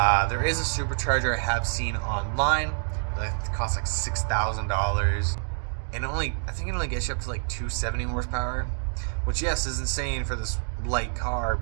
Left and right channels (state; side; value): silent; left; digital silence